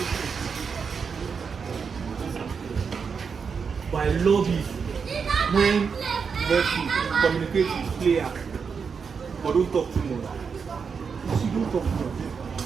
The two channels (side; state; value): left; quieter; 5.9 dB